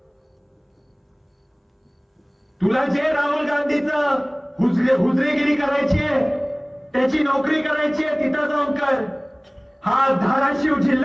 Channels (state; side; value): identical; both; correlation 1.00